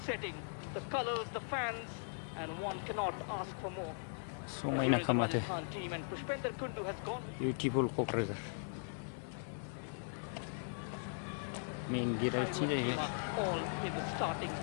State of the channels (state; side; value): silent; right; digital silence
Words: setting, the colors, the fans, and one cannot ask for more. So Here is the Rajasthan team, and Pushpender Kundu has gone with beautiful cockroach. Main gear अच्छी रही है. all in the starting.